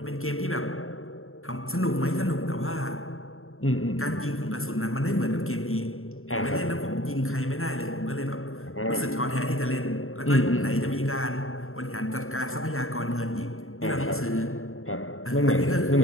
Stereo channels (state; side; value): late; right; 0.61 ms